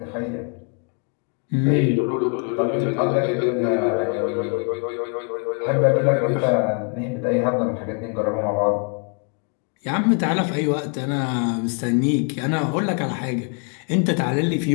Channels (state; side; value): quieter; right; 38.4 dB